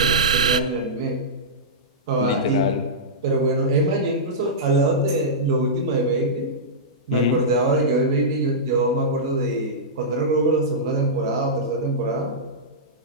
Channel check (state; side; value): normal; both; correlation -0.15